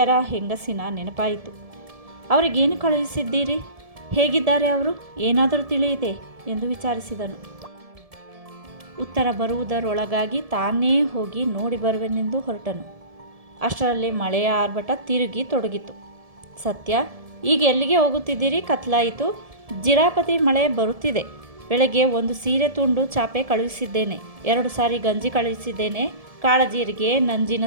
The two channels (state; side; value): late; left; 1.7 ms